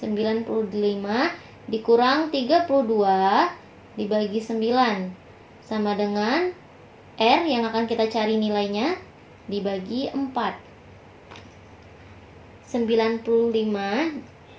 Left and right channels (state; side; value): identical; both; correlation 1.00